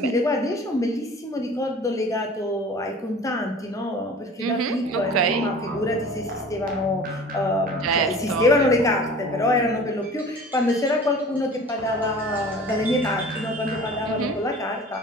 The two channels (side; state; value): both; normal; correlation 0.43